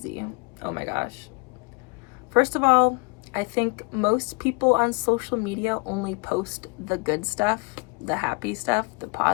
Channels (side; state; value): right; quieter; 30.1 dB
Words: Oh my gosh. First of all, I think most people on social media only post the good stuff, the happy stuff, the